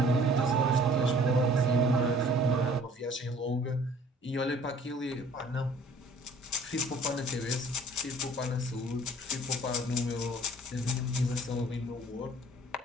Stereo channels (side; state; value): both; normal; correlation 0.53